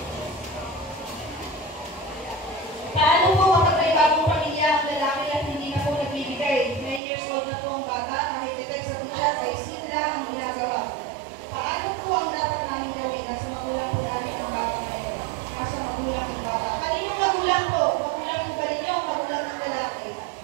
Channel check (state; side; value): drops out; left; at 7.0 s